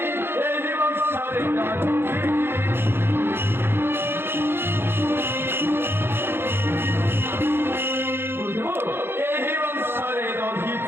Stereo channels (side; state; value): left; late; 0.11 ms